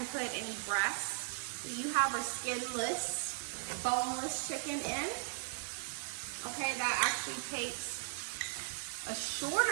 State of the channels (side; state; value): left; silent; digital silence